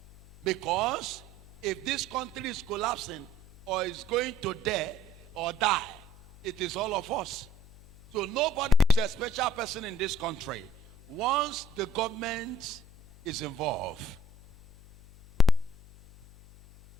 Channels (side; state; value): left; noise; hum, 21 dB below the sound